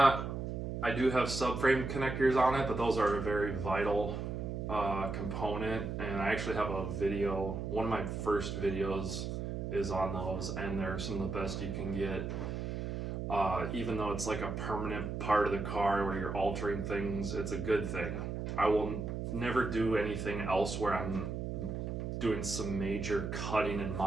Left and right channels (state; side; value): noise; right; hum, 4 dB below the sound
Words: do have subframe connectors on it, but those are a very vital component, and I actually have a video, one of my first videos is on those, and they're some of the best you can get. Even though it's like a permanent part of the car where you're altering things, it's a good thing. I will never do anything else where I'm doing some major cutting and